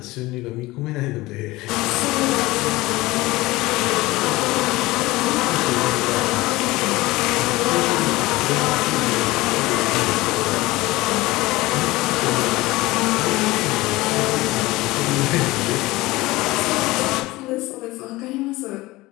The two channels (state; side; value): quieter; right; 19.9 dB